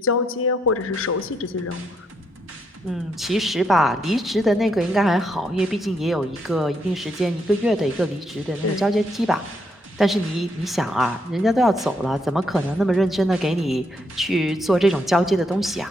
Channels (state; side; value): normal; both; correlation 0.76